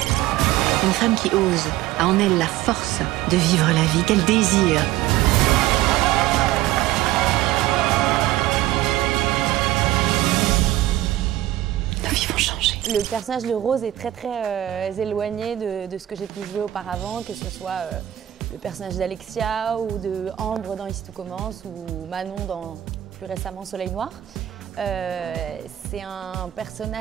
Une femme qui ose, a en elle la force de vivre la vie qu'elle désire. Nos vies vont changer. Le personnage de Rose est très éloigné de ce que j'ai pu jouer auparavant, que ce soit le personnage d'Alexia ou de Ambre dans Ici tout commence ou Manon dans plus récemment Soleil Noir. C'est un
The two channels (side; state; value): left; quieter; 14.2 dB